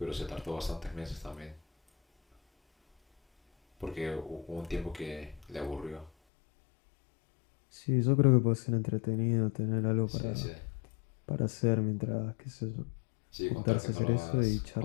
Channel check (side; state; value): right; drops out; at 6.1 s